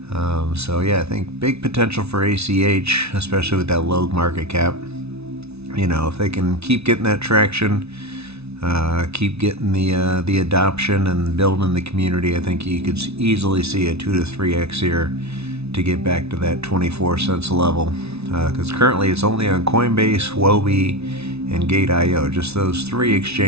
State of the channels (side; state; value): left; late; 0.80 ms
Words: So yeah, I think big potential for ACH, especially with that low market cap. You know, if they can keep getting that traction, keep getting the adoption and building the community, I think you could easily see a 2 to 3x here to get back to that 24 cents level. Because currently it's only on Coinbase, Huobi, and Gate.io, just those three